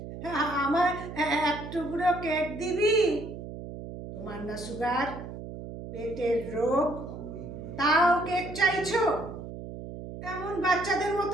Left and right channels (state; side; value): noise; right; hum, 10 dB below the sound